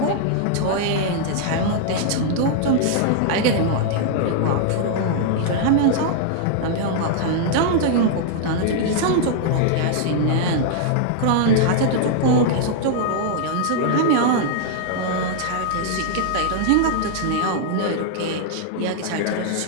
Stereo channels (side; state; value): both; different; correlation -0.01